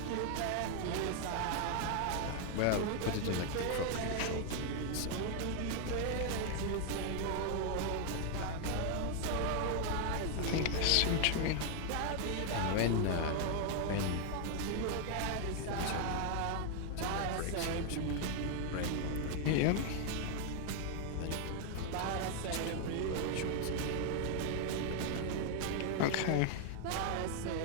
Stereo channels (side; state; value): both; different; correlation 0.00